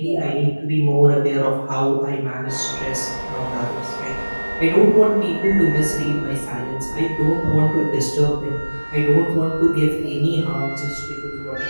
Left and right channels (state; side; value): inverted; both; correlation -1.00